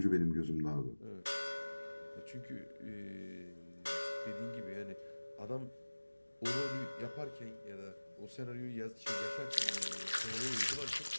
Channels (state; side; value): inverted; both; correlation -1.00